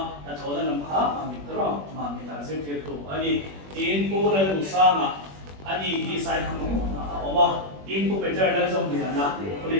na thola nam kha amitra ma mita zirtir tu ani in pura lusanga ani hi sai khamo na oma in pu peter na zong Liana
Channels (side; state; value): left; late; 21 ms